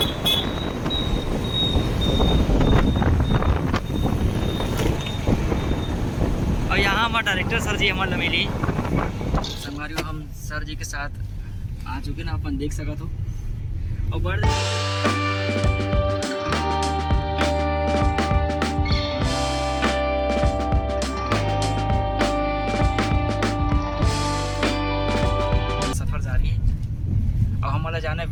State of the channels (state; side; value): identical; both; correlation 1.00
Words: और यहाँ हमारे डायरेक्टर सर जी हमारे मिली संगवारी हम सर जी के साथ आ चुके ना अपन देख सकते हो। और बड़ सफर जारी है और हमारा जाना है